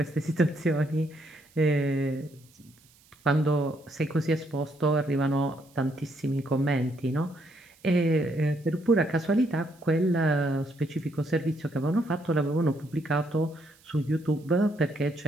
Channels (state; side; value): noise; right; hiss, 29 dB below the sound